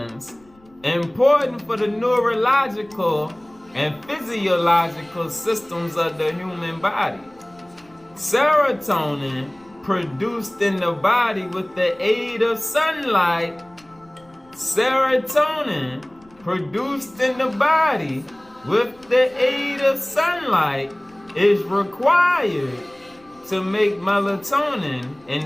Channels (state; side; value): noise; left; rumble, 30 dB below the sound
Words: important for the neurological and physiological systems of the human body. Serotonin, produced in the body with the aid of sunlight, serotonin, produced in the body with the aid of sunlight, is required to make melatonin